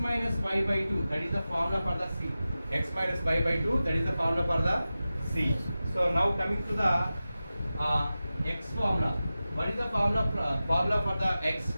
y by 2. That is the formula for the c. X minus y by 2. That is the formula for the c. So now coming to the x formula. What is the formula for the x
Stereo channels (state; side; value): inverted; both; correlation -0.95